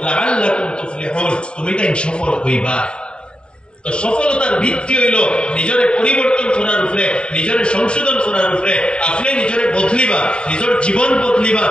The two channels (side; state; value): right; late; 0.052 ms